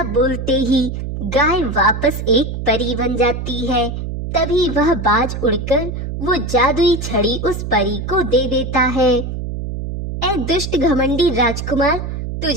बोलते ही गाय वापस एक परी बन जाती है। तभी वह बाज उड़कर वो जादुई छड़ी उस परी को दे देता है। ए दुष्ट घमंडी राजकुमार,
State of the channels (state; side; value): noise; right; hum, 5 dB below the sound